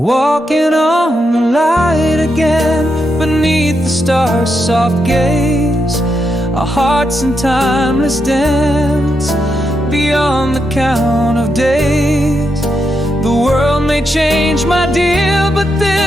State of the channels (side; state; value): both; normal; correlation 0.83